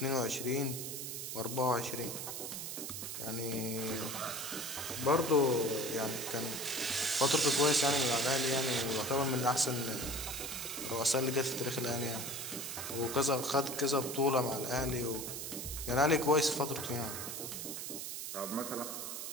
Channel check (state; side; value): noise; right; hiss, 6 dB below the sound